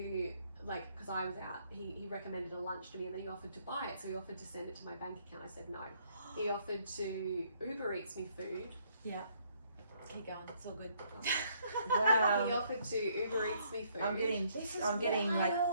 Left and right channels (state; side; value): inverted; both; correlation -0.68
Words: like, because I was out, he recommended a lunch to me and then he offered to buy it. So he offered to send it to my bank account. I said no. He offered to Uber Eats me food. Yeah. Keep going. It's all good. Wow. He offered to Uber Eats me food. I'm getting like,